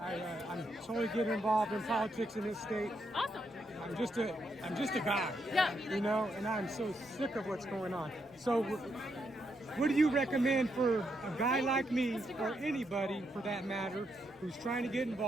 I'm totally getting involved in politics in this state. Awesome. I'm just a guy. Yeah. And I'm so sick of what's going on. So, what do you recommend for a guy like me, or anybody for that matter, who's trying to get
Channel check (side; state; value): both; normal; correlation 0.79